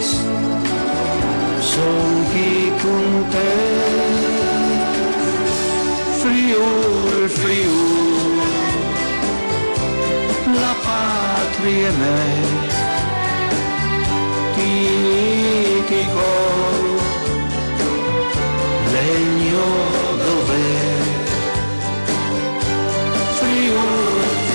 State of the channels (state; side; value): inverted; both; correlation -1.00